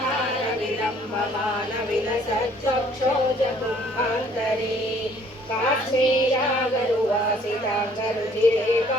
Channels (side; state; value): both; normal; correlation 0.59